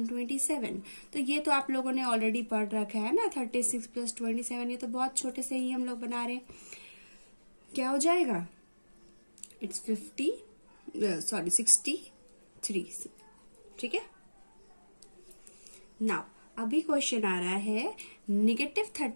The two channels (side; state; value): both; inverted; correlation -1.00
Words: 27। तो ये तो आप लोगों ने ऑलरेडी पढ़ रखा है ना, 36 + 27, ये तो बहुत छोटे से ही हम लोग बना रहे हैं। क्या हो जाएगा? इट्स 63। ठीक है, नाउ अभी क्वेश्चन आ रहा है